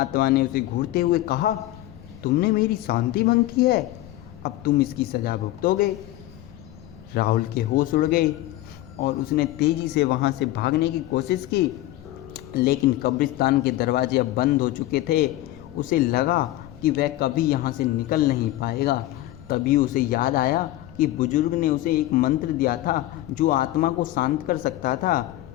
ने उसे घूरते हुए कहा, तुमने मेरी शांति भंग की है, अब तुम इसकी सजा भुगतोगे। राहुल के होश उड़ गए और उसने तेजी से वहां से भागने की कोशिश की, लेकिन कब्रिस्तान के दरवाजे अब बंद हो चुके थे। उसे लगा कि वह कभी यहाँ से निकल नहीं पाएगा। तभी उसे याद आया कि बुजुर्ग ने उसे एक मंत्र दिया था जो आत्मा को शांत कर सकता था।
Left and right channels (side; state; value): right; quieter; 15.7 dB